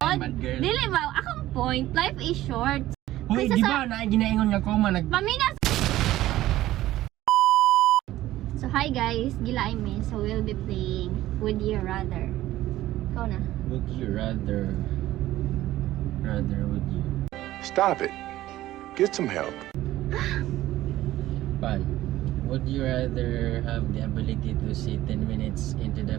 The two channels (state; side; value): quieter; left; 15.1 dB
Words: bad girl. dili ba? Akong point, life is short. Hoy, Kaysa di ba na ginaingon nga koma Paminas! So, hi guys. Gila me. So, we'll be playing Would You Rather. Ikaw na. Would you rather would you? Stop it. Get some help. Pan, would you rather have the ability to see 10 minutes into